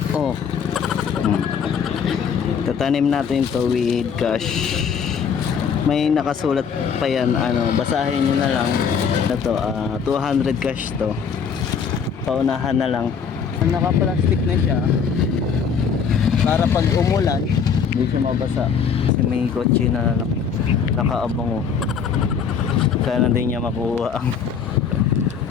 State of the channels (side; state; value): right; quieter; 6.7 dB